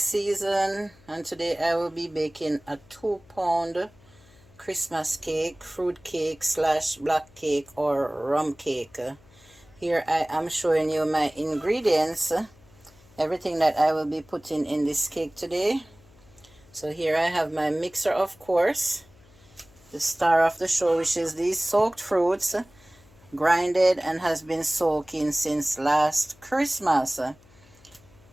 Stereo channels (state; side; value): noise; left; hum, 27 dB below the sound